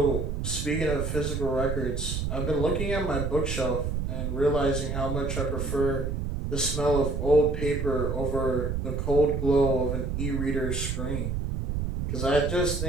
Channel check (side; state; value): right; noise; rumble, 2 dB below the sound